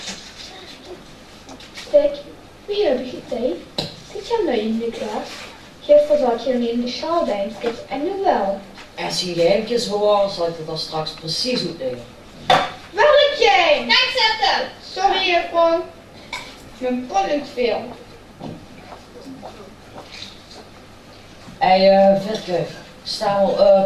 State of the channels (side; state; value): both; identical; correlation 1.00